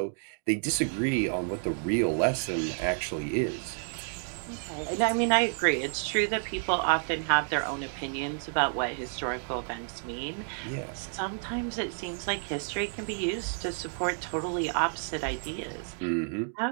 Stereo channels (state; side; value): silent; left; 58 dB below the other